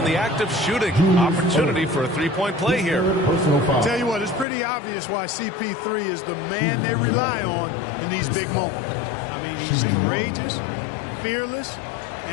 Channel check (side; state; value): right; drops out; at 4.5 s